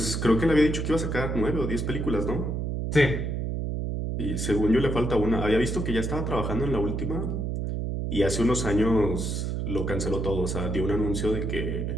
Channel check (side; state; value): right; noise; hum, 2 dB below the sound